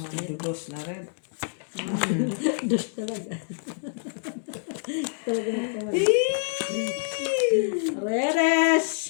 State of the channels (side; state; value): right; silent; digital silence